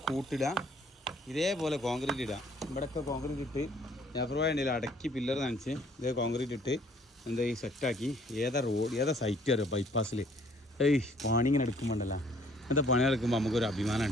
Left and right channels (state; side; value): normal; both; correlation 0.60